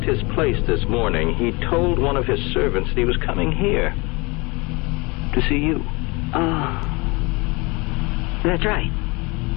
his place this morning, he told one of his servants that he was coming here to see you. Oh, that's right.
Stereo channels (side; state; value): right; quieter; 26.6 dB